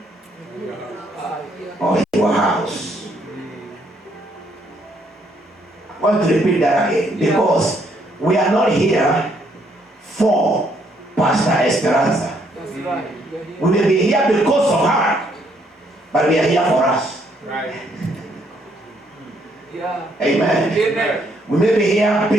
or your house. I want to repeat that again, because we are not here for Pastor Speranza. That's right. We may be here because of her, but we are here for us. Right. Yeah. Amen. Amen. We may be here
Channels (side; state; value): both; normal; correlation 0.70